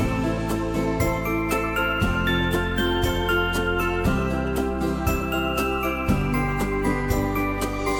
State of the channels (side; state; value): both; identical; correlation 1.00